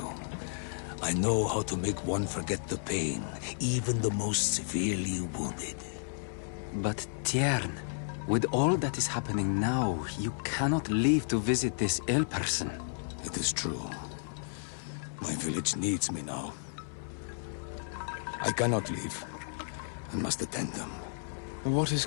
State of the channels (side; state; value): right; silent; digital silence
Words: I know how to make one forget the pain, even the most severely wounded. But Tiern, with all that is happening now, you cannot leave to visit this ill person. It is true. My village needs me now. I cannot leave. I must attend them. What is